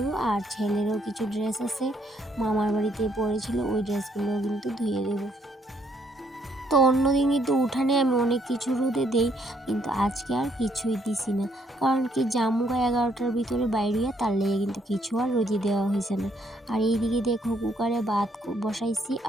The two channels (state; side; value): normal; both; correlation 0.70